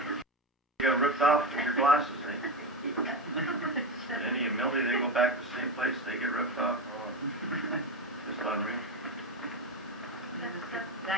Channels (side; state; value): both; normal; correlation 0.17